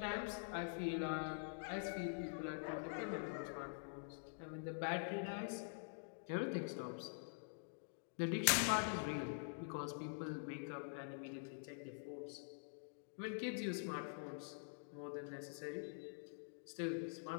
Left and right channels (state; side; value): silent; right; digital silence